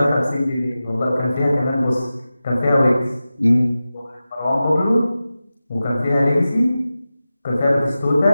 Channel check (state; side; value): inverted; both; correlation -0.94